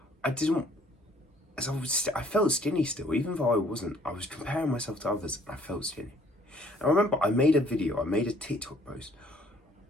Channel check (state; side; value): normal; both; correlation 0.60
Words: I felt skinny still, even though I wasn't. I was comparing myself to others and I felt skinny. And I remember I made a TikTok post